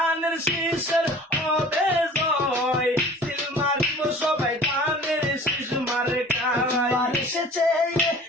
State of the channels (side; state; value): both; normal; correlation 0.45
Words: শীষের হবে জয় সিল মারিব সবাই দানের শীষ মার্কায় এসেছে